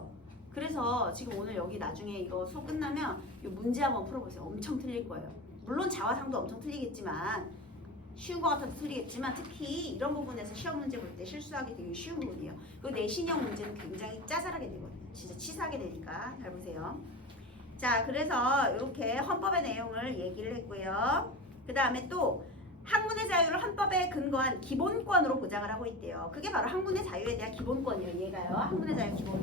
그래서 지금 오늘 여기 나중에 이거 수업 끝나면 이 문제 한번 풀어보세요. 엄청 틀릴 거예요. 물론 자화상도 엄청 틀리겠지만 쉬운 거 같아도 틀리겠지만 특히 이런 부분에서 시험 문제 볼 때 실수하기 되게 쉬운 부분이에요. 그리고 내신형 문제는 굉장히 짜잘하게 되거든요. 진짜 치사하게 되니까 잘 보세요. 자, 그래서 이렇게 헌법의 내용을 얘기를 했고요. 그 다음에 또 학문의 자유를 헌법에 근거한 기본권으로 보장을 하고 있대요. 그게 바로 학문의 자유에 대한 기본권이에요. 얘가요. 학문의 자유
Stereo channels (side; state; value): both; normal; correlation 0.28